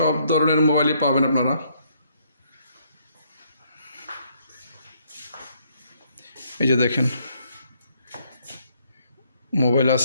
ধরনের মোবাইলই পাবেন আপনারা। এই যে দেখেন, মোবাইল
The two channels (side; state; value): both; inverted; correlation -0.70